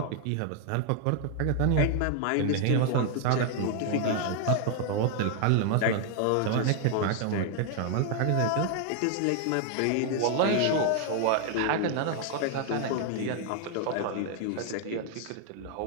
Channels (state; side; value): different; both; correlation 0.00